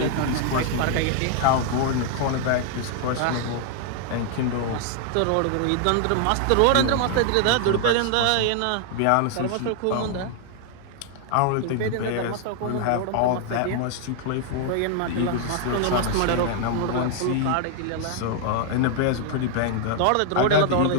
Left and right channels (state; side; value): different; both; correlation 0.00